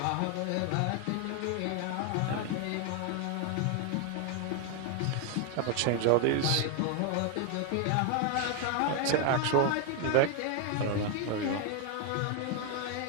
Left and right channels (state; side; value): different; both; correlation 0.01